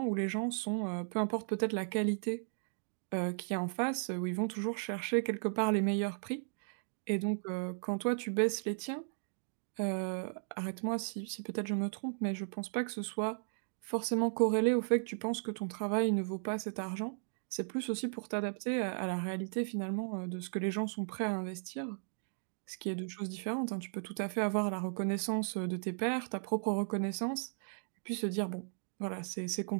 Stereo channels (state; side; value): silent; left; digital silence